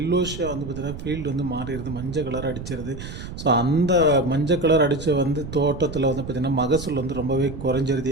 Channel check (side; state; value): right; noise; rumble, 10 dB below the sound